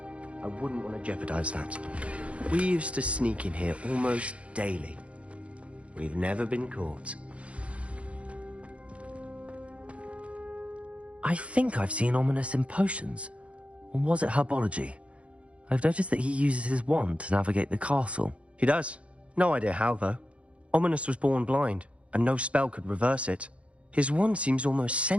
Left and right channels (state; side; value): late; left; 0.062 ms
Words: I wouldn't want to jeopardize that. We used to sneak in here almost daily. We've never been caught. I think I've seen Ominous in potions. Or was it herbology? I've noticed that he uses his wand to navigate the castle. He does. No idea how, though. Ominous was born blind, and no spell could reverse it. His wand seems almost